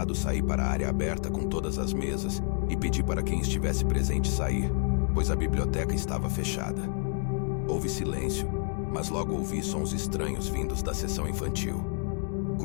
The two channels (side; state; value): right; silent; 59 dB below the other